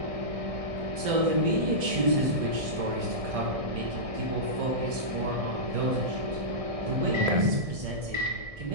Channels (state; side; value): late; left; 1.6 ms